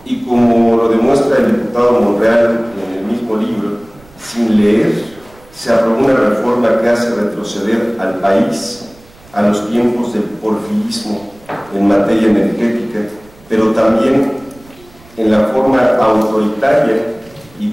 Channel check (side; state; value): right; noise; rumble, 26 dB below the sound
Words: y como lo demuestra el diputado Monreal en el mismo libro, sin leer, se aprobó una reforma que hace retroceder al país a los tiempos del porfirismo en materia energética, pero también en la forma autoritaria y